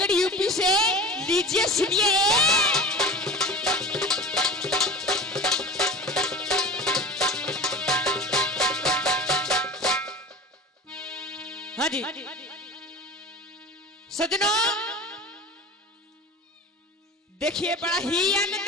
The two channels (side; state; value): both; normal; correlation 0.35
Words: यूपी से लीजिए सुनिए। हाँ जी सजनों देखिए बड़ा ही